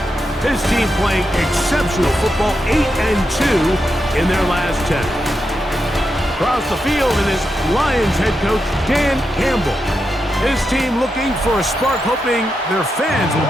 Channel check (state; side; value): normal; both; correlation 0.86